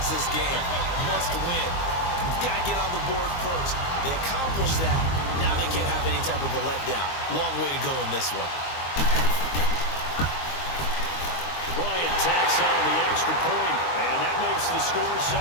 this game. Must win. You've got to get on the board first. They accomplished that. Now they can't have any type of a letdown. Long way to go in this one. Bryant tacks on the extra point, and that makes the score 7-0.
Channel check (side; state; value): right; late; 23 ms